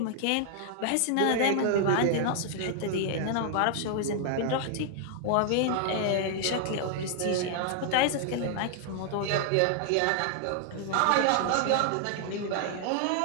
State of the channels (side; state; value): both; different; correlation 0.00